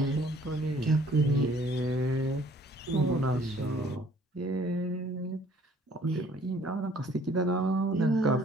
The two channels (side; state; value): both; normal; correlation 0.57